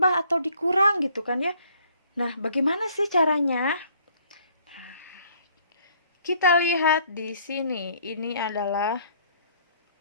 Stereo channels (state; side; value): inverted; both; correlation -0.61